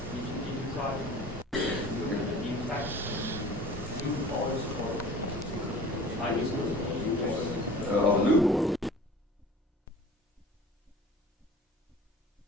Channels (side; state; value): both; normal; correlation 0.43